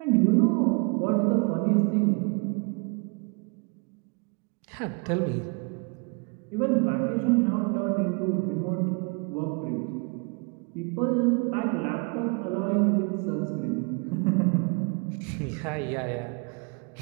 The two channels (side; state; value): left; quieter; 33.5 dB